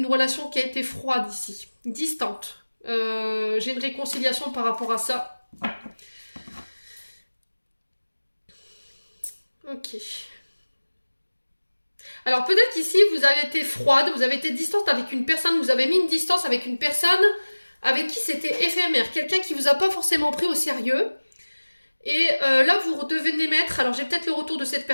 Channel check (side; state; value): both; inverted; correlation -1.00